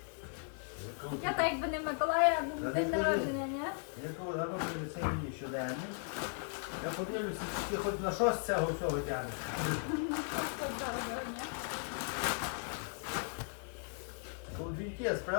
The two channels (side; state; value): right; silent; 53 dB below the other